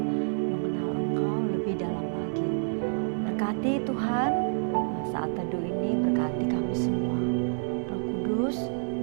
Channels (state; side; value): silent; left; 59 dB below the other